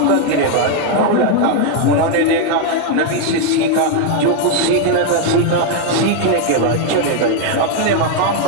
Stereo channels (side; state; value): both; different; correlation 0.01